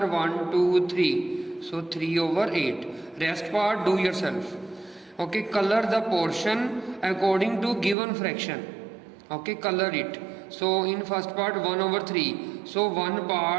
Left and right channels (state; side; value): drops out; left; at 8.0 s